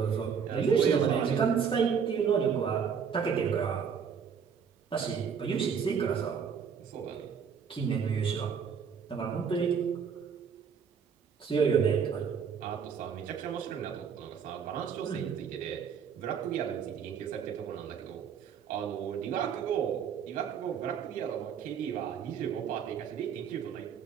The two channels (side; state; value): left; quieter; 6.9 dB